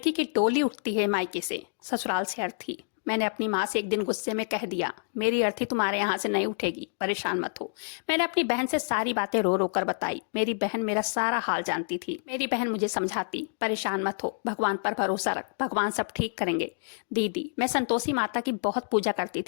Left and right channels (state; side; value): silent; right; digital silence